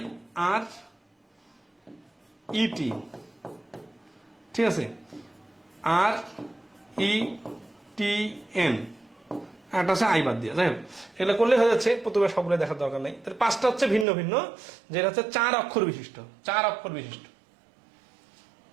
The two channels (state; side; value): drops out; left; at 14.1 s